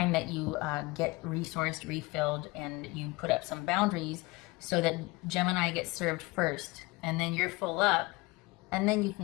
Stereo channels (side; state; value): right; quieter; 23.2 dB